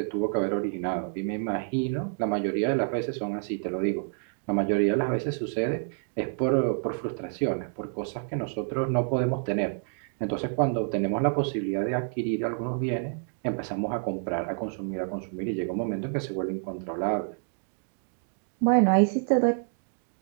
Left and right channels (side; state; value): left; silent; 59 dB below the other